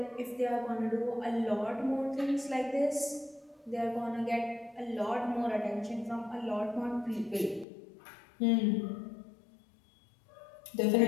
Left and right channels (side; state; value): right; drops out; at 7.7 s